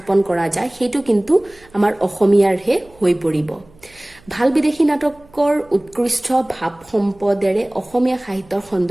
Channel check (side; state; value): right; noise; hum, 28 dB below the sound